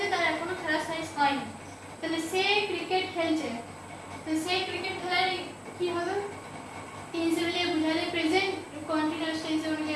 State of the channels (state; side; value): identical; both; correlation 1.00